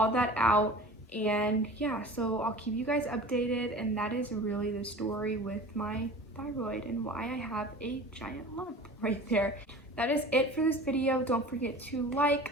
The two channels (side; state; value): both; normal; correlation 0.39